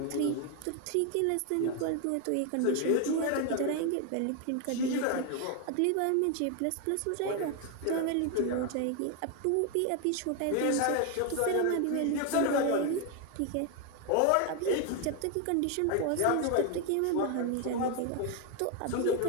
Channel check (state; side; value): different; both; correlation 0.01